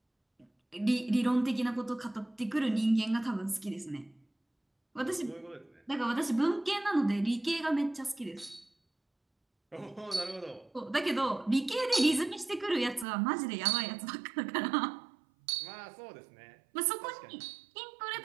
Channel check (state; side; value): drops out; left; at 13.1 s